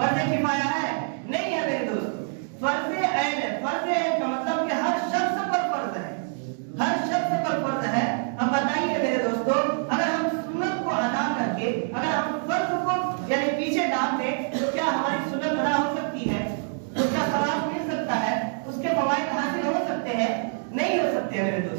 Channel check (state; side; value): silent; left; 61 dB below the other